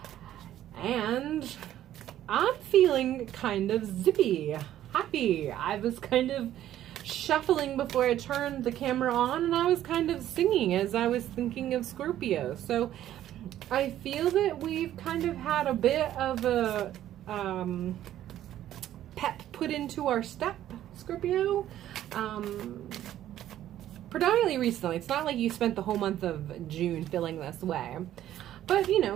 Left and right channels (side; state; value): left; quieter; 12.3 dB